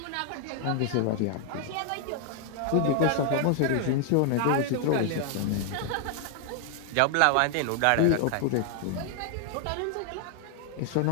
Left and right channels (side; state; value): both; different; correlation 0.00